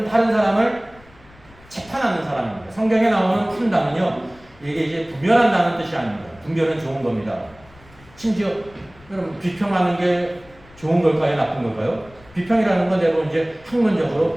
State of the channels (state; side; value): noise; left; rumble, 25 dB below the sound